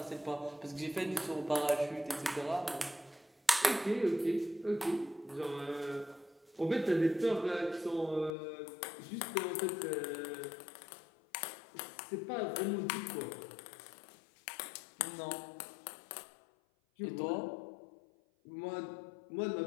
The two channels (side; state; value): right; drops out; at 8.3 s